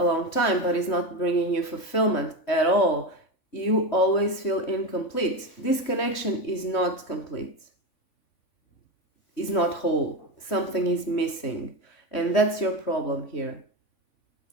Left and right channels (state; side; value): late; right; 3.5 ms